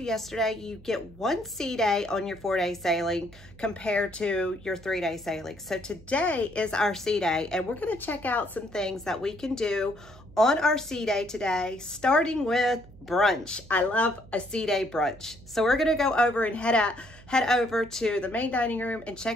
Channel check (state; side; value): noise; right; hum, 21 dB below the sound